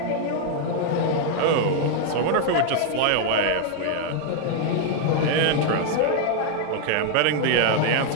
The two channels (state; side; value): different; both; correlation 0.00